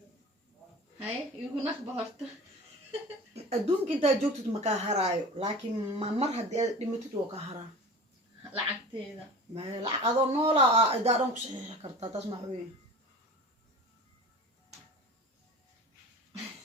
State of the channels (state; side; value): normal; both; correlation 0.37